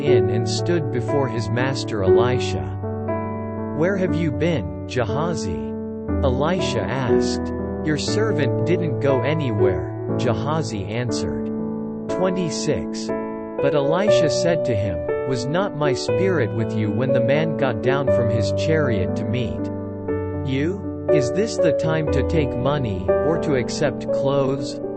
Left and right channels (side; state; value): both; identical; correlation 1.00